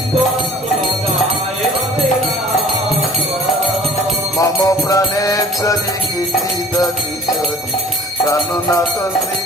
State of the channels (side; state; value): both; normal; correlation 0.48